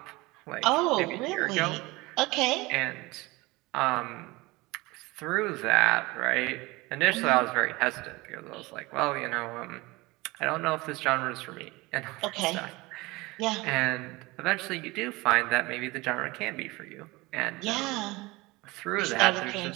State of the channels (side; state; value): left; quieter; 22.2 dB